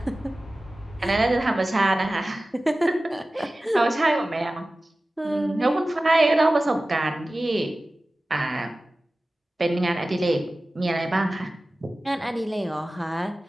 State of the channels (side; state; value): both; normal; correlation 0.96